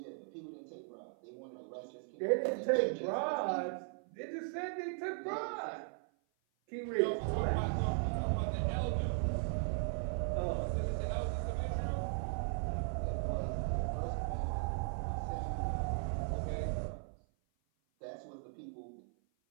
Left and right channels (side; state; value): left; silent; 53 dB below the other